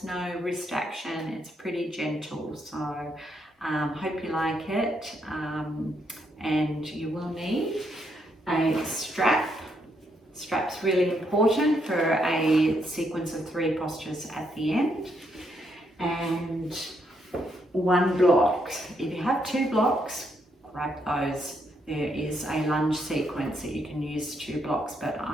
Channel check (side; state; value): both; normal; correlation 0.76